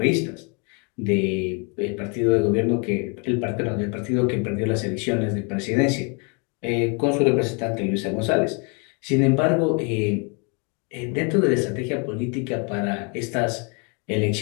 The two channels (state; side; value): quieter; right; 34.3 dB